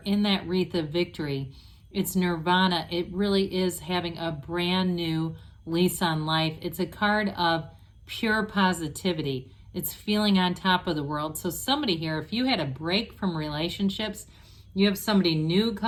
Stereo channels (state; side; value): identical; both; correlation 1.00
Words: in that wreath of victory. It's nirvana. It really is having a brand new lease on life. It's a card of pure positivity. It's feeling on top of the world. So somebody here, if you had a break from relationships, you have somebody new